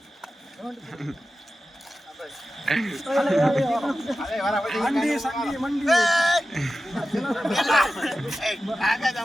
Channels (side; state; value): both; normal; correlation 0.94